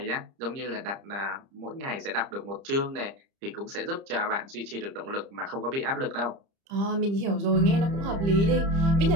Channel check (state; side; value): late; left; 30 ms